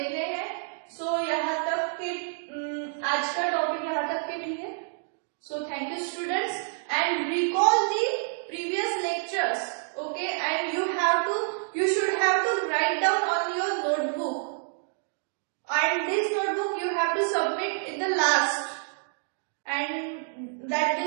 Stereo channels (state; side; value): silent; left; digital silence